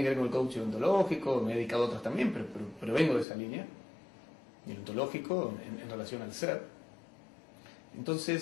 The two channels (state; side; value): drops out; right; at 3.2 s